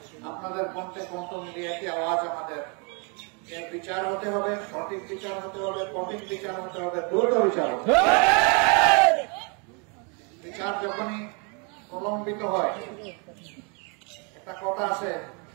আপনাদের কণ্ঠে কণ্ঠ মিলিয়ে একটি আওয়াজ আমাদের এর বিচার হতে হবে, সঠিক বিচার হতে হবে, কঠিন বিচার হতে হবে, দ্রুত বিচার হতে হবে। বিচার যখনই প্রলম্বিত হয়, একটা কথা আছে,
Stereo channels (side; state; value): left; quieter; 34.9 dB